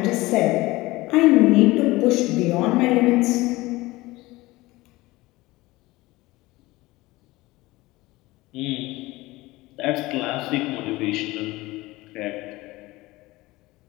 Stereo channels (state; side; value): quieter; right; 20.0 dB